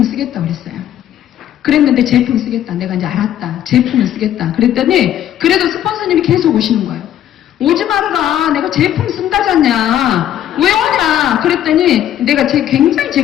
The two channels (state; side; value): quieter; right; 11.3 dB